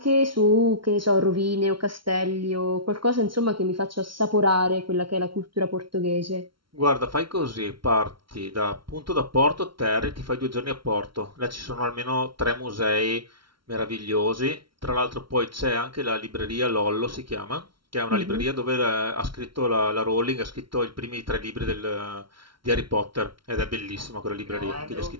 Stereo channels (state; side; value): late; left; 0.74 ms